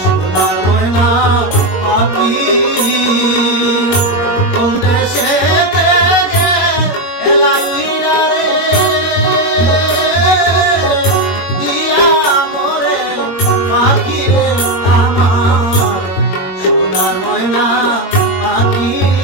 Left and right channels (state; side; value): late; right; 21 ms